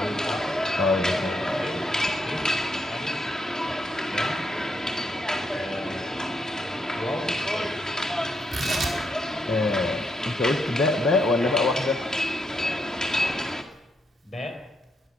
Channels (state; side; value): normal; both; correlation 0.79